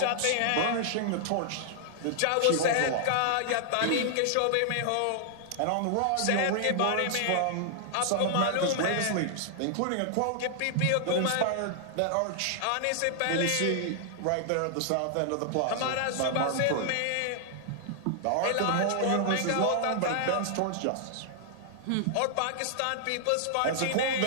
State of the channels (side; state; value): both; different; correlation -0.01